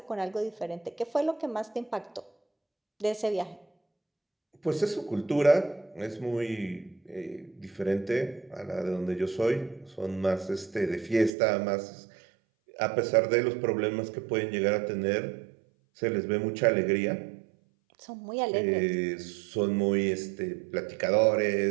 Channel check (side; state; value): left; drops out; at 11.3 s